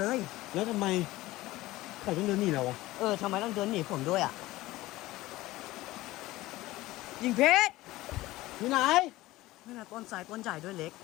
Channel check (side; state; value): right; quieter; 18.0 dB